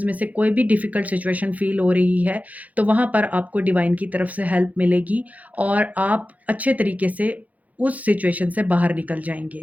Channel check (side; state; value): left; late; 0.075 ms